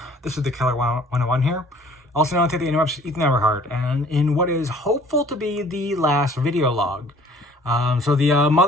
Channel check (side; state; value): both; normal; correlation 0.53